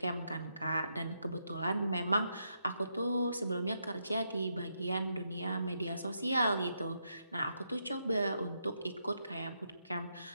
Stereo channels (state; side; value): inverted; both; correlation -0.80